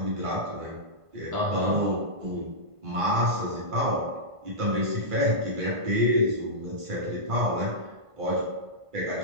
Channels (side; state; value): left; late; 1.5 ms